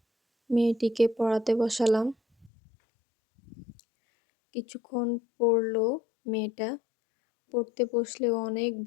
মেয়েটিকে পড়াতে বসালাম। কিছুক্ষণ পড়লো মেয়েটা, পড়তে বসলেও অনেক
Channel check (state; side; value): drops out; right; at 2.5 s